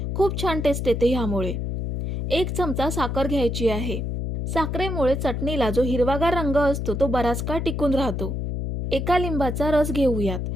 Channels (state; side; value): noise; left; hum, 3 dB below the sound